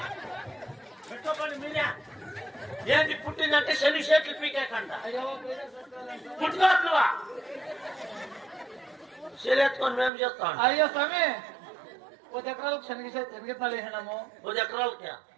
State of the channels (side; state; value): left; drops out; at 10.1 s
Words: పెట్టుకోండి మీరే. ఏంటి పుట్టిందంటే శని షేట్లు పీకేకంట. పుట్టుకోవట్లువా? శరీరెత్తుకొని మేము చేస్తాం. అయ్యో స్వామి 10 ఎకరాలకు శనగెత్తాలు వేసినాము. 10 ఎకరాలకి